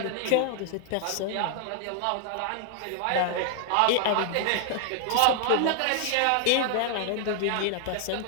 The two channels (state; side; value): different; both; correlation 0.00